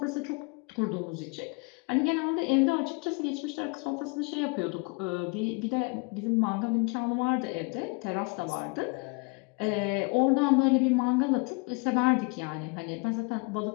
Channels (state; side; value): quieter; right; 30.7 dB